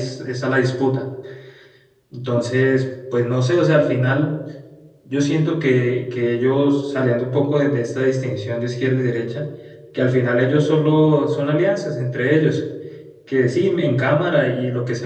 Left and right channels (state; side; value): identical; both; correlation 1.00